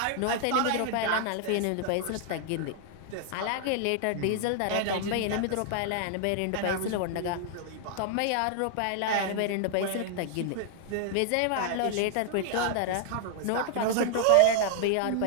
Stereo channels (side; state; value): both; different; correlation 0.00